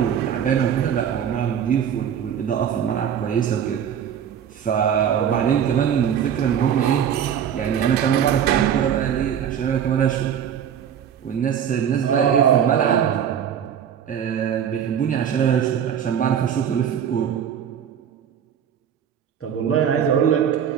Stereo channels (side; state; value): left; quieter; 8.7 dB